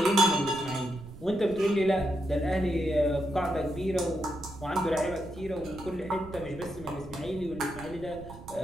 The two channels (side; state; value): right; noise; rumble, 16 dB below the sound